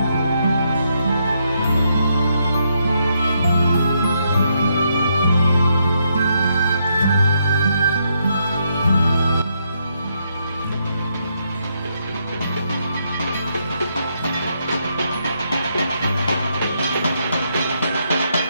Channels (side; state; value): both; inverted; correlation -0.77